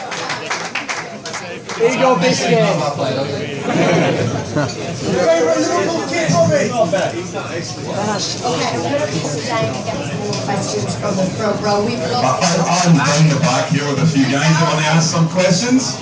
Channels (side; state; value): both; identical; correlation 1.00